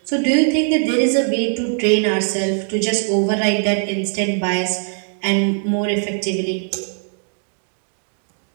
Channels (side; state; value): left; silent; 57 dB below the other